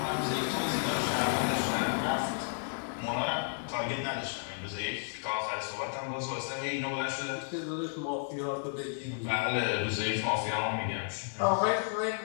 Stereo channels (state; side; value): silent; right; digital silence